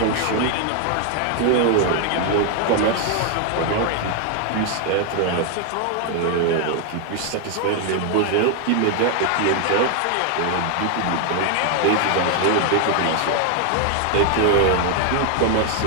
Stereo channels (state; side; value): different; both; correlation 0.00